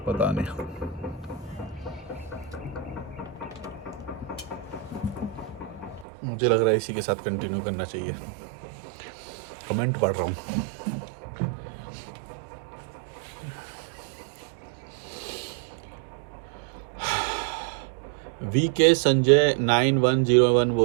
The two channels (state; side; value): drops out; left; at 6.1 s